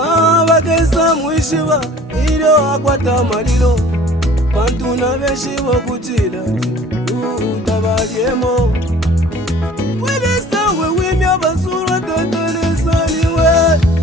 bagesa mwishiba ilyo akwata malilo bantu na benshi bokutila utabalyemo wedesawe wimya basura totonesaniwe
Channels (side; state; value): both; normal; correlation 0.49